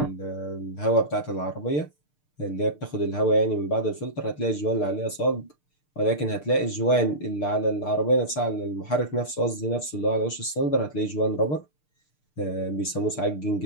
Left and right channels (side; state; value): right; late; 6.6 ms